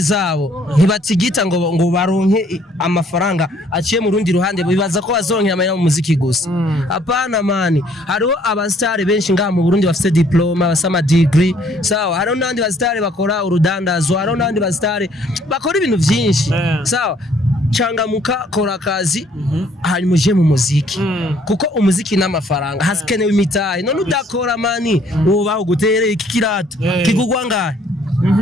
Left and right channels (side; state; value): both; normal; correlation 0.62